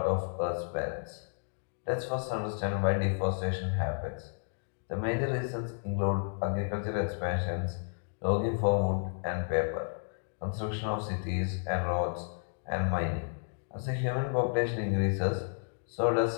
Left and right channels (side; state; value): right; silent; digital silence